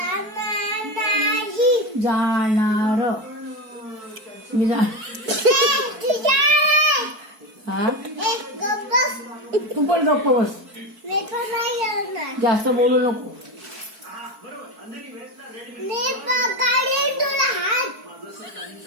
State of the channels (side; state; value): left; late; 4.6 ms